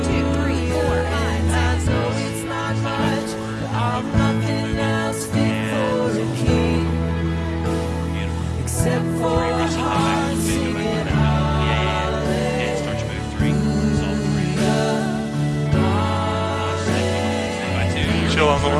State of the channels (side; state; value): both; identical; correlation 1.00